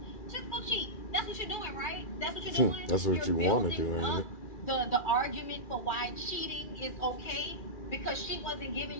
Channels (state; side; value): late; right; 2.4 ms